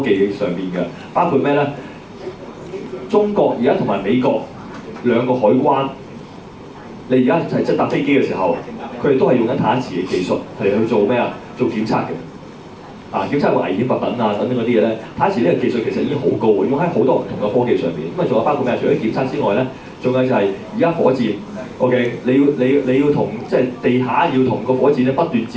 技上面嘅，包括咩咧？中國而家同埋美國兩個海關，你而家係即係搭飛機嘅時候，佢哋都係用緊太一磁嘅技術係去做咩啊？做檢測嘅。檢測個危險物品等等嗰啲嘢咧，太一磁呢個技術其實已經好高嘅，用喺好多唔同嘅科技上面。咁仲有包括咩？除咗檢測之外咧，仲有就係而家火箭 ，OK， 你要同即係地下要同個火箭咧不斷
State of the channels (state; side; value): identical; both; correlation 1.00